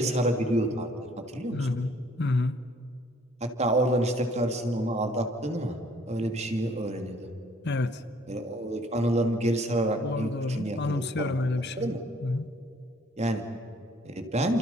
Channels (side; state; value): both; normal; correlation 0.60